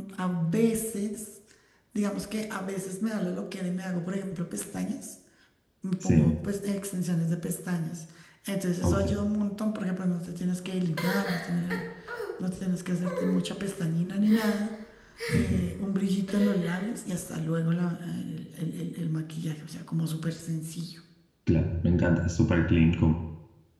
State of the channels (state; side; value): identical; both; correlation 1.00